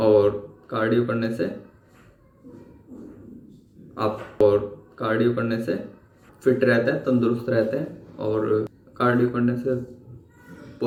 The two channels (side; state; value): both; identical; correlation 1.00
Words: और कार्डियो करने से फिट रहते हैं, तंदुरुस्त रहते हैं और कार्डियो करने से